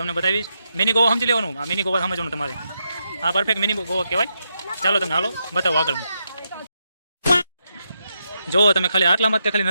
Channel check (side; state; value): both; inverted; correlation -0.83